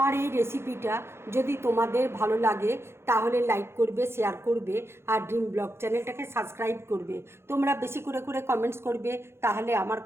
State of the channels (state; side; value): late; left; 0.12 ms